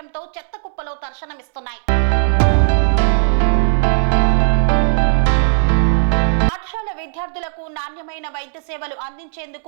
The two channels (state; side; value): silent; left; 68 dB below the other